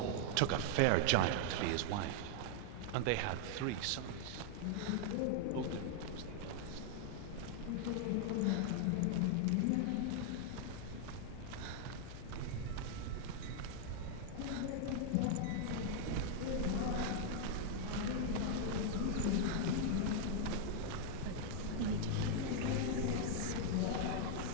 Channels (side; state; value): both; different; correlation 0.00